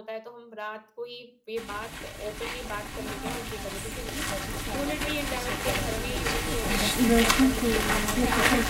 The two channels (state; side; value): identical; both; correlation 1.00